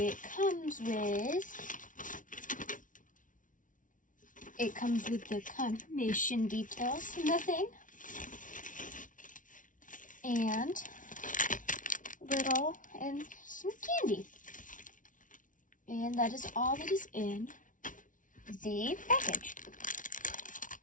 comes with the confirmation details in the thing. And some candy. And that is all that is in the package.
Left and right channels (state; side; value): late; right; 0.38 ms